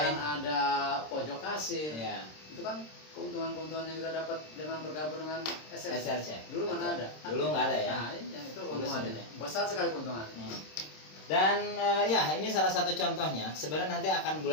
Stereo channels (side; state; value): right; late; 26 ms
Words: ada pojok kasir. ya. Itu kan keuntungan-keuntungan yang kita dapat dengan bergabung dengan SRC. SRC. Dulu mana ada? Dulu nggak ada ya. Nah, iya, itu keuntungannya. sebenarnya. Besar sekali keuntungannya. Dan ya ini salah satu contohnya. Sebenarnya nanti akan